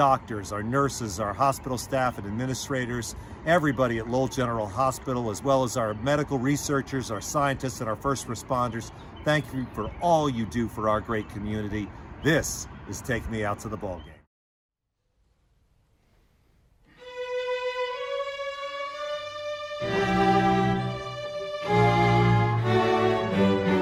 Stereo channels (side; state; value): both; identical; correlation 1.00